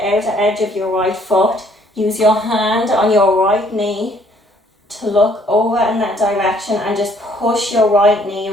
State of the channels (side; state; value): both; normal; correlation 0.63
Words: edge of your right foot. Use your hand on your right knee to look over in that direction and just push your right knee